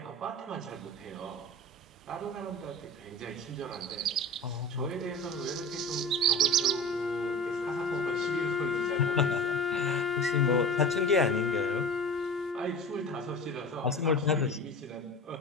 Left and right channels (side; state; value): both; normal; correlation 0.34